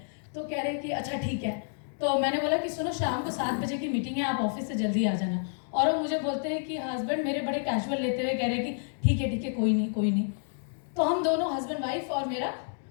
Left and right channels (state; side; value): silent; right; digital silence